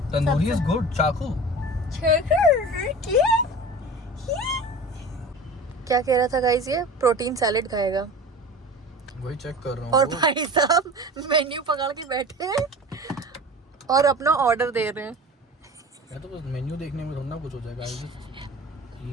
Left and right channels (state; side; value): normal; both; correlation 0.36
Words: तंदूरी इज गुड। चाकू क्या कह रहा था गाइस? ये प्रोटीन सैलेड खाएगा वही चेक कर रहा हूँ। और भाई साहब मेन्यू पकड़ के बैठे हैं और अपना ऑर्डर दे रहे हैं। मैं तो बस मेन्यू देखने में थोड़ा कुछ हो जाएगा। I just